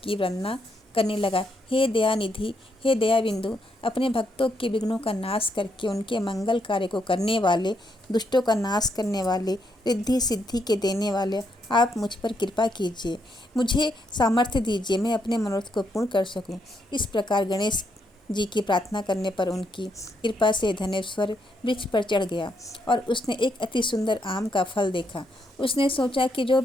की वंदना करने लगा। हे दयानिधि, हे दया बिंदु, अपने भक्तों के विघ्नों का नाश करके उनके मंगल कार्य को करने वाले, दुष्टों का नाश करने वाले, रिद्धि सिद्धि के देने वाले, आप मुझ पर कृपा कीजिए, मुझे सामर्थ्य दीजिए, मैं अपने मनोरथ को पूर्ण कर सकूं। इस प्रकार गणेश जी की प्रार्थना करने पर उनकी कृपा से धनेश्वर वृक्ष पर चढ़ गया और उसने एक अति सुंदर आम का फल देखा। उसने सोचा कि जो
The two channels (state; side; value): normal; both; correlation 0.77